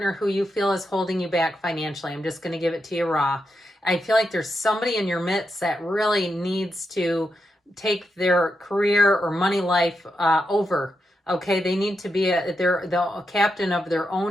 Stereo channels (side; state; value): both; normal; correlation 0.85